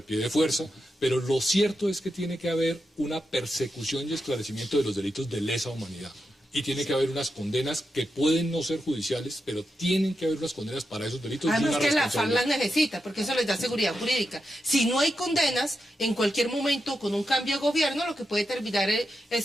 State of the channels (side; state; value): both; normal; correlation 0.87